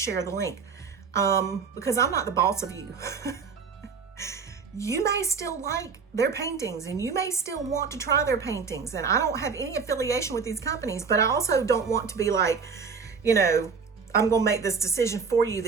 the link? Because I'm not the boss of you. You may still like their paintings and you may still want to try their paintings. And I don't have any affiliation with these companies, but I also don't want to be like, you know, I'm going to make this decision for you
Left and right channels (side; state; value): left; quieter; 5.5 dB